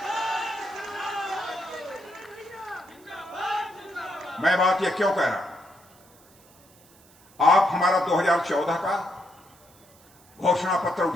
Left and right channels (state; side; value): noise; right; hiss, 28 dB below the sound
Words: मैं बात यह क्यों कह रहा हूं, आप हमारा 2014 का घोषणा पत्र